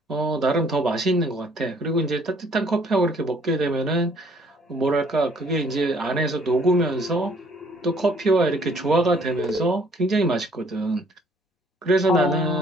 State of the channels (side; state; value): both; normal; correlation 0.61